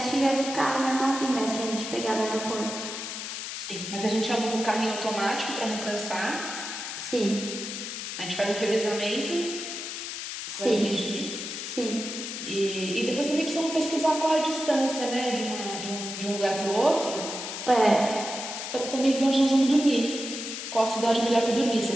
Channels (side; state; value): left; noise; hiss, 6 dB below the sound